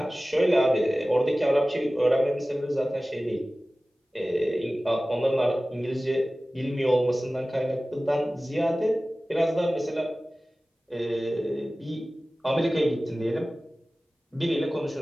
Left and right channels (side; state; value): both; normal; correlation 0.97